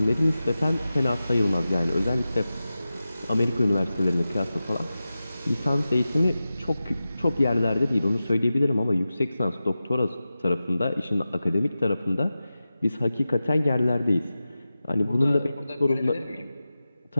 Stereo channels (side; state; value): both; inverted; correlation -0.94